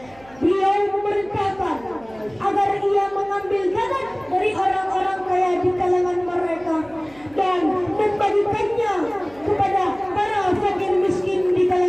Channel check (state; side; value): noise; right; hum, 25 dB below the sound